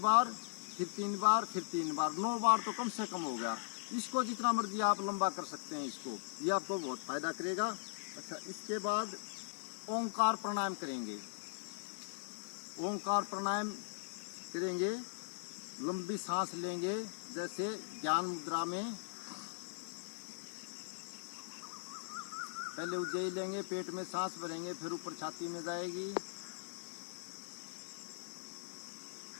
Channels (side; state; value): right; silent; 51 dB below the other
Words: बार, फिर 3 बार, फिर 3 बार, 9 बार तो कम से कम हो गया। इसको जितना मर्जी आप लंबा कर सकते हैं इसको, ये आपको बहुत फायदा करेगा। अच्छा, इसके बाद ओंकार प्राणायाम करेंगे। ओंकार प्राणायाम करेंगे, लंबी सांस लेंगे, जैसे ज्ञान मुद्रा में पहले उज्जयी लेंगे, पेट में सांस भरेंगे, फिर ऊपर छाती में जाएगी।